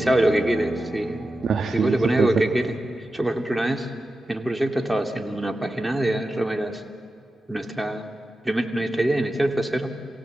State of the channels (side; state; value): both; normal; correlation 0.92